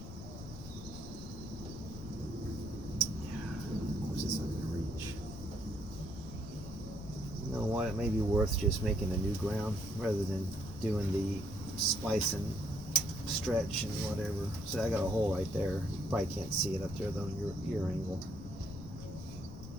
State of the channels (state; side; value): noise; left; rumble, 11 dB below the sound